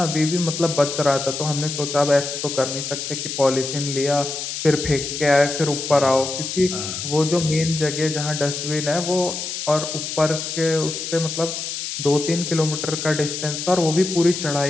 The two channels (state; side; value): noise; left; hiss, 5 dB below the sound